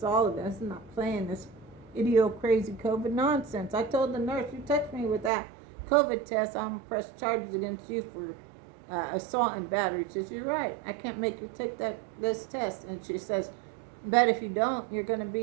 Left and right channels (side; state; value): left; drops out; at 5.3 s